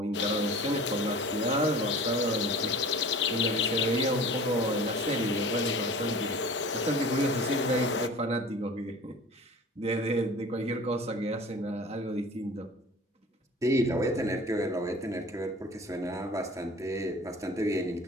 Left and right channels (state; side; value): normal; both; correlation 0.41